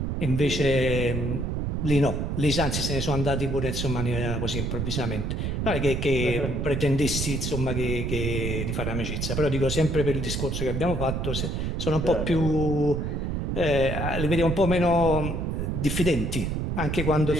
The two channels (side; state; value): right; noise; rumble, 1 dB below the sound